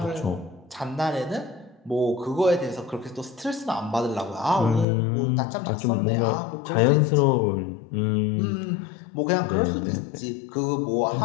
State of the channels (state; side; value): drops out; right; at 4.9 s